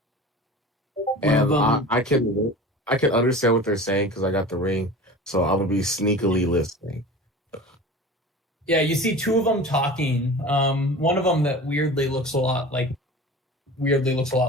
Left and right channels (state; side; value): normal; both; correlation 0.37